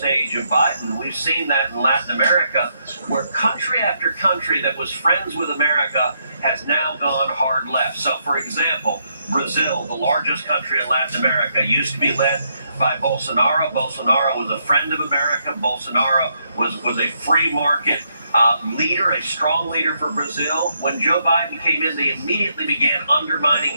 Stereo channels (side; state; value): both; inverted; correlation -0.76